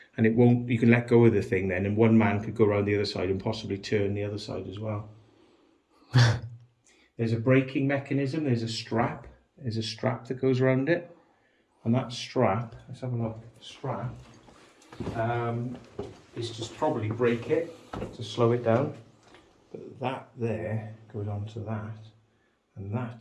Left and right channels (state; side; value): identical; both; correlation 1.00